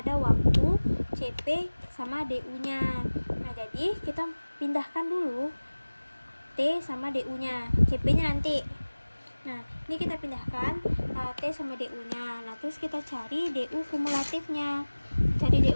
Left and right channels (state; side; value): inverted; both; correlation -1.00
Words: waktu CP sama DU-nya. Nah jadi kita pindahkan dulu T sama DU-nya, CP-nya nanti. Nah, ini kita pindahkan T sama DU-nya. Nah, terus kita cari DU kumulatifnya. Cari